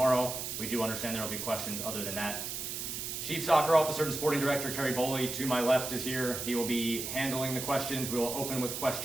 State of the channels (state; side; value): noise; right; hiss, 5 dB below the sound